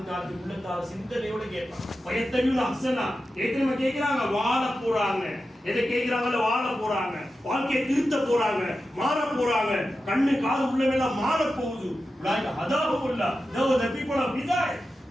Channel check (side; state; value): both; normal; correlation 0.91